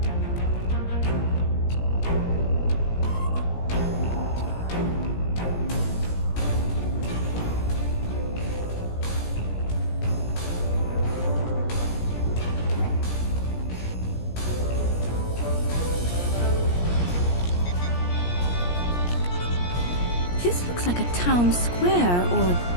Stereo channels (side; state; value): right; late; 17 ms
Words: This looks like a town square or